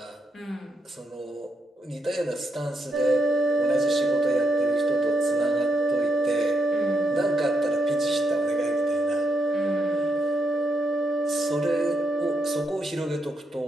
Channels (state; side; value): normal; both; correlation 0.80